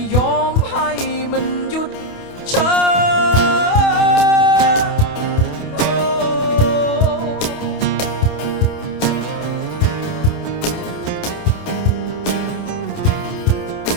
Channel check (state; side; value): late; right; 28 ms